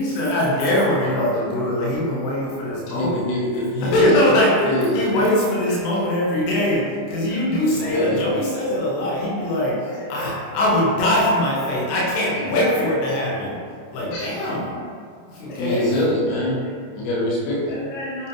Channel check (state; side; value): late; right; 29 ms